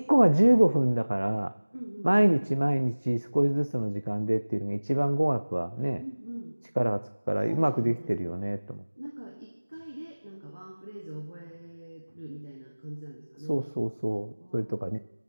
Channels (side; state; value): both; inverted; correlation -1.00